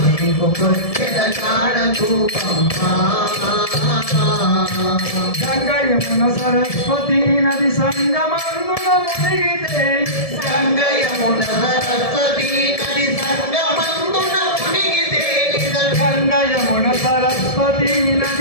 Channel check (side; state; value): right; late; 1.7 ms